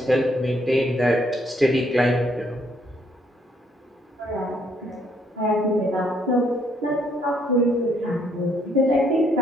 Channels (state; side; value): normal; both; correlation 0.69